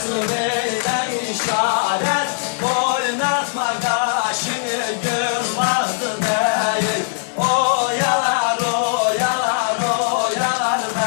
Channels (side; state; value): right; silent; 66 dB below the other